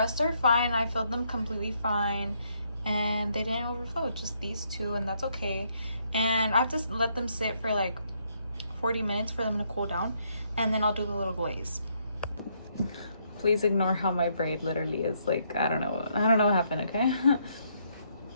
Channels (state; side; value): inverted; both; correlation -0.73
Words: are fine. I filled them completely fine. And they didn't overflow, just these two, and that's okay. And I have to let them sit for like 40 minutes for them to cool down, and then I'll do the little glaze. Please ignore how my braid literally is like, I don't know what happened, okay?